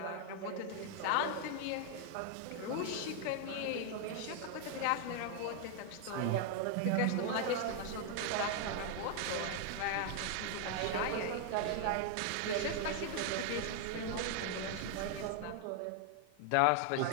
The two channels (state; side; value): different; both; correlation 0.00